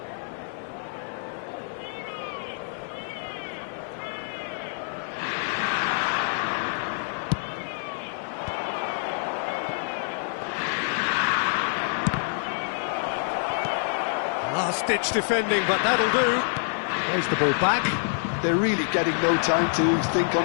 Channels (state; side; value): silent; right; 55 dB below the other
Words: Last-ditch defending, but that'll do. Plays the ball back. They're really getting no time to think